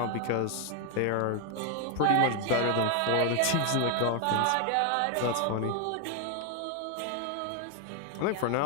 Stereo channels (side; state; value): both; different; correlation 0.01